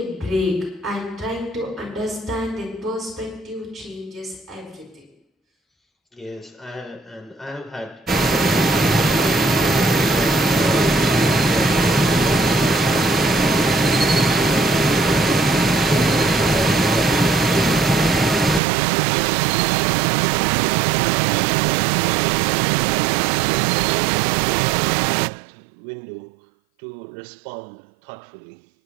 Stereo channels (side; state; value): left; drops out; at 18.6 s